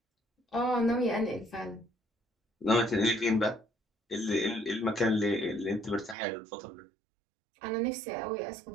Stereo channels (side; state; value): left; drops out; at 6.2 s